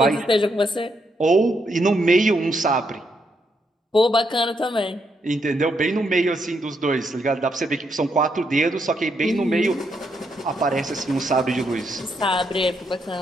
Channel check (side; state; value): both; normal; correlation 0.78